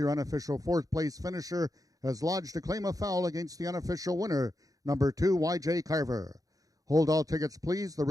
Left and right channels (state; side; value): late; left; 0.17 ms